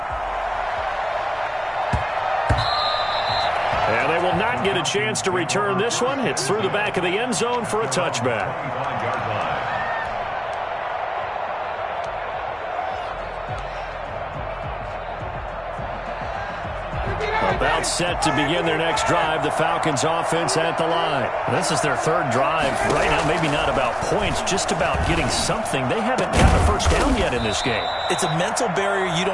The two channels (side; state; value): both; identical; correlation 1.00